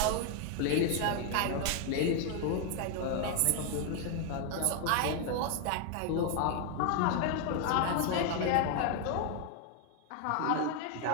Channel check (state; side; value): different; both; correlation 0.01